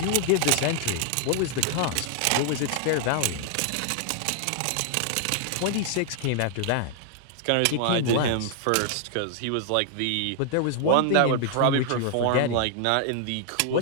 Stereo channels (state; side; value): different; both; correlation 0.00